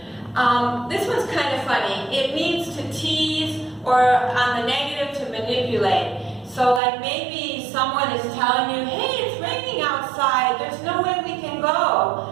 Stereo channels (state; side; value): drops out; left; at 6.8 s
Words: This one's kind of funny. It means to tease, or on the negative, to manipulate. So like maybe someone is telling you, hey, it's raining outside, there's no way we can